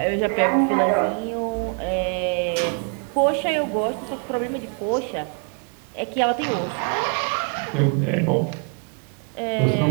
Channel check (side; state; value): left; quieter; 37.8 dB